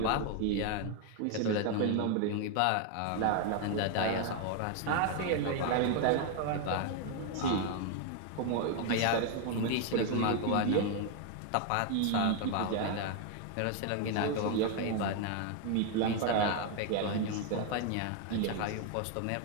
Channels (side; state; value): both; different; correlation 0.01